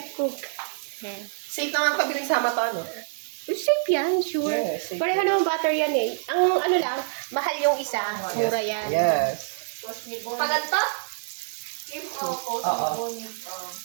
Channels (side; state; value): left; silent; digital silence